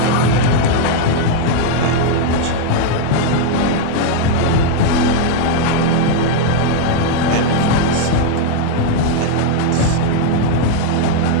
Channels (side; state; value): both; different; correlation 0.00